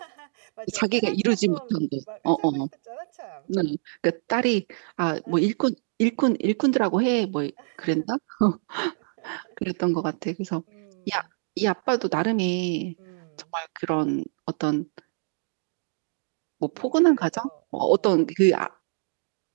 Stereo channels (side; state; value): left; silent; digital silence